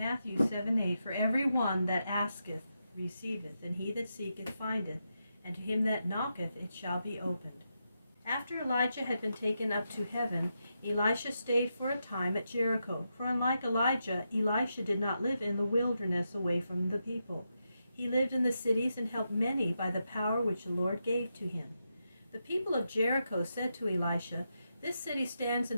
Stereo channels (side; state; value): both; inverted; correlation -0.85